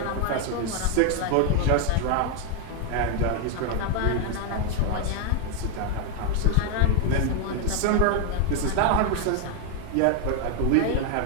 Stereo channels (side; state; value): both; different; correlation 0.01